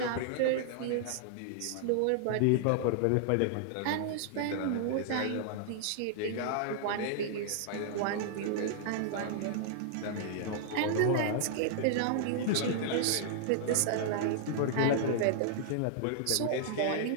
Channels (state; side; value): different; both; correlation -0.01